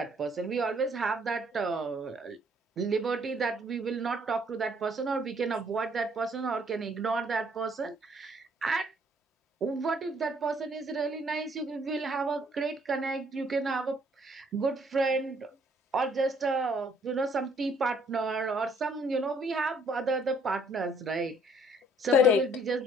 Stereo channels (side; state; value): both; normal; correlation 0.63